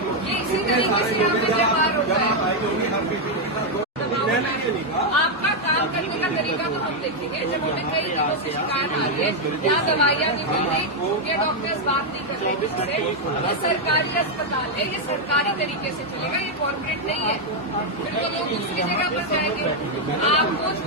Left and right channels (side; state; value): both; normal; correlation 0.01